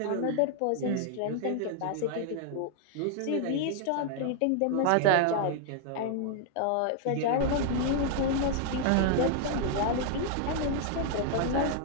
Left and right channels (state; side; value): different; both; correlation 0.00